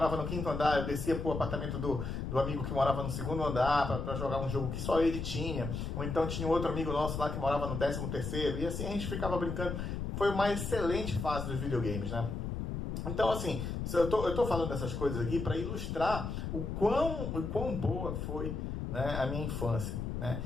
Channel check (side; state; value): left; noise; rumble, 4 dB below the sound